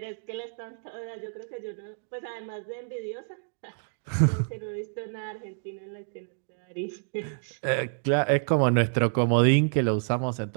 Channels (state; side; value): silent; left; digital silence